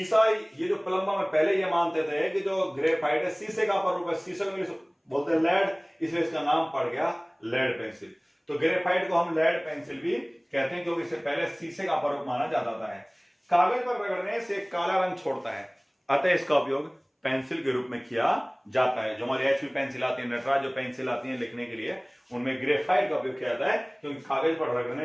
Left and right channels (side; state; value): both; identical; correlation 1.00